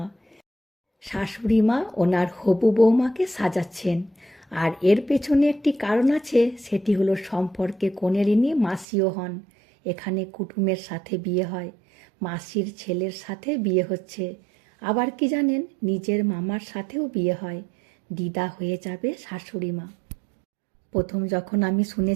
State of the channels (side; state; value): left; drops out; at 8.8 s